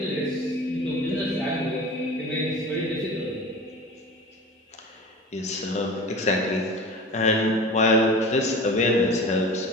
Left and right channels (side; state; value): both; normal; correlation 0.36